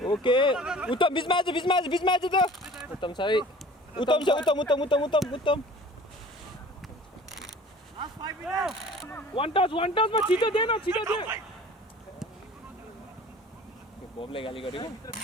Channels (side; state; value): both; normal; correlation 0.46